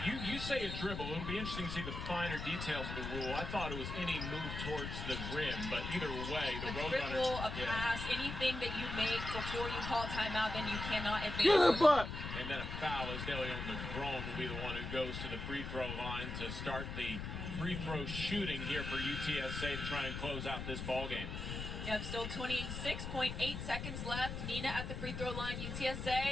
you say a dribble. It'll be interesting to see the finer details of the rule. I thought it was any move towards the rim, but either way, the Roadrunners. Dribble, a pass, anything that you make before you call timeout, then you cannot advance. Get a butt. And then a foul as DeLeon Negron will be the one who goes to the free throw line to start the free throw shooting here for UTSA to try and close out this ball game. Yep, still 26.8 seconds left. Nina at the free throw line.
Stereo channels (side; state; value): left; noise; rumble, 5 dB below the sound